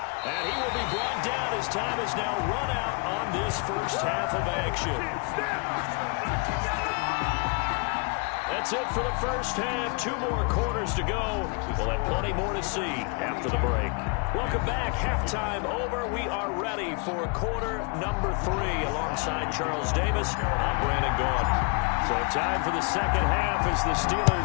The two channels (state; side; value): quieter; right; 34.3 dB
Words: And he will be brought down. His time is now run out on this first half of action. That's it for the first half. 2 more quarters to go. We'll have plenty more to see after the break. Welcome back. Halftime over. We are ready for quarter number 3 alongside Charles Davis. I'm Brandon Gaughan. So time for the second half as the